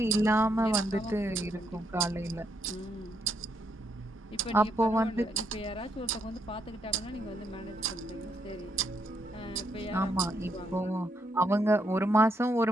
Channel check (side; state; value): both; normal; correlation 0.76